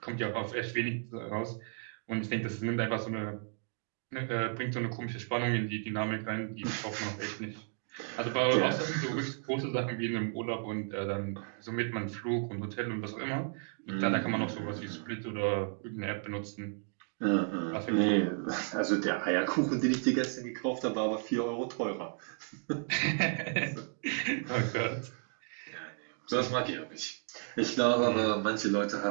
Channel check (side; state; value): left; silent; 55 dB below the other